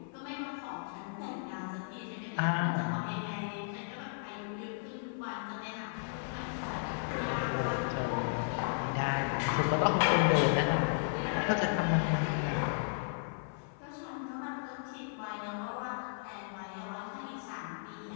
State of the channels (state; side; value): silent; right; 55 dB below the other